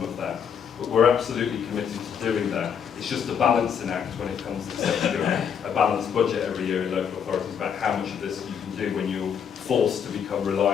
of that. But we're absolutely committed to doing that. It's just a balancing act when it comes to setting a balanced budget every year in local authorities about how much of this you can do when you're forced to become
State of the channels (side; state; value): right; quieter; 7.6 dB